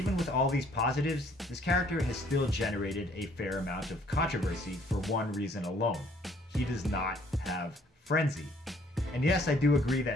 with all these positives, this character has still generated a fair amount of controversy for one reason alone. He does not have Frenzy. And yes, I do agree that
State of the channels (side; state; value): both; normal; correlation 0.61